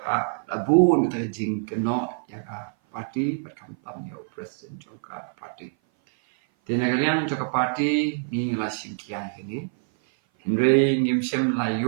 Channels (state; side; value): silent; left; 57 dB below the other